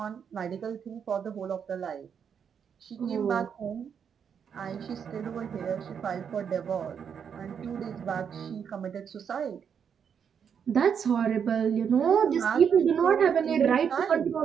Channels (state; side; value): quieter; left; 7.4 dB